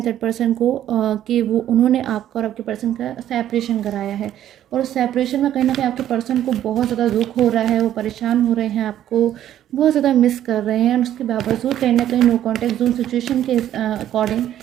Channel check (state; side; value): quieter; left; 11.6 dB